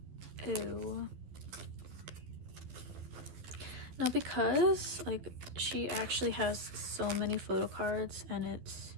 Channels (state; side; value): late; left; 12 ms